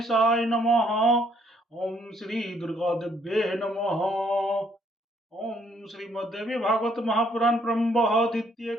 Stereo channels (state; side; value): normal; both; correlation 0.68